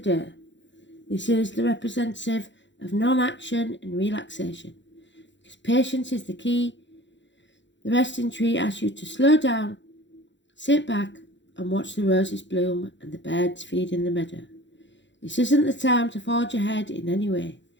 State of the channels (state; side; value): late; right; 0.53 ms